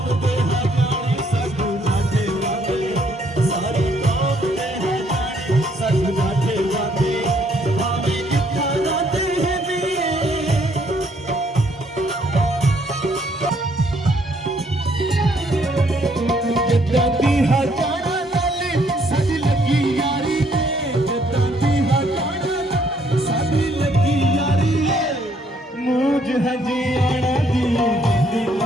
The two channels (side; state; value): both; normal; correlation 0.67